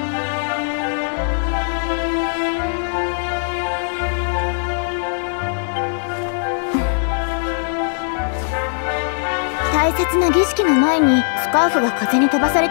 大切な儀式の前にスカーフが風に飛ばされ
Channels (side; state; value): right; silent; 62 dB below the other